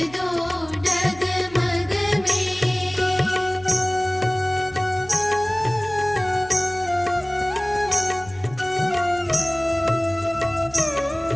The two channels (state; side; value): noise; right; hum, 20 dB below the sound